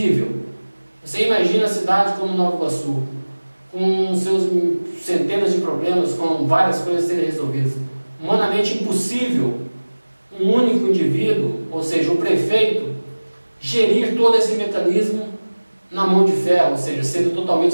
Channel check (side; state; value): both; inverted; correlation -1.00